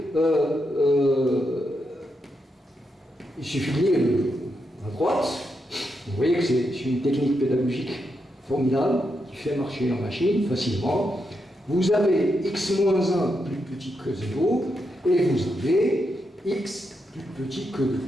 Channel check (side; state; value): both; normal; correlation 0.83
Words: il suffit de lire à droite. Vous voyez que c'est une technique pédagogique formidable qui fait marcher la machine facilement. Vous avez x moins 1 plus petit que 0 et vous avez x plus petit que 2.